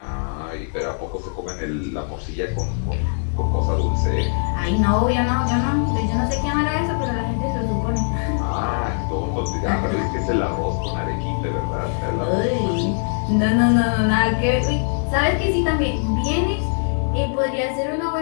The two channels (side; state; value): right; silent; digital silence